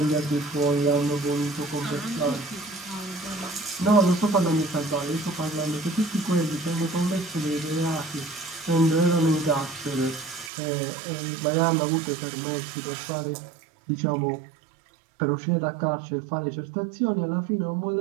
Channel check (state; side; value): drops out; left; at 10.5 s